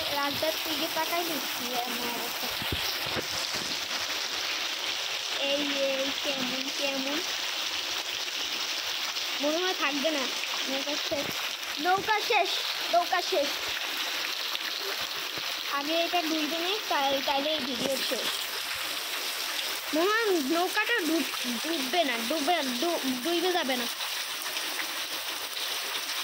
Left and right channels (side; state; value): both; identical; correlation 1.00